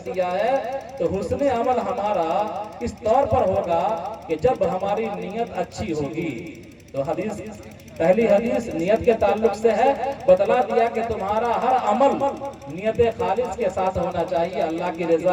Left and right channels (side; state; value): both; identical; correlation 1.00